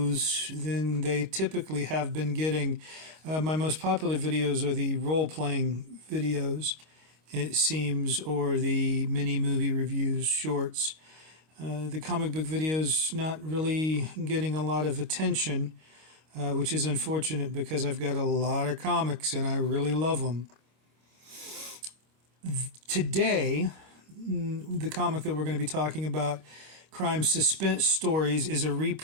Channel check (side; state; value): left; late; 25 ms